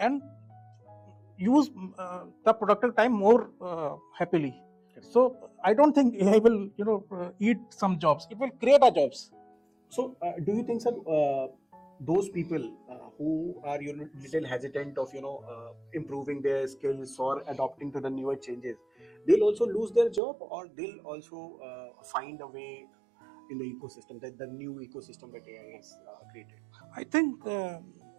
use the productive time more happily. So I don't think AI will eat some jobs. It will create a jobs. So, do you think, sir, those people who are little hesitant of improving their skills or adopting to the newer changes, they'll also lose their job, or they'll also find a way in the ecosystem, that the new ecosystem that AI has created? I think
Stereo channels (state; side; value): drops out; left; at 20.2 s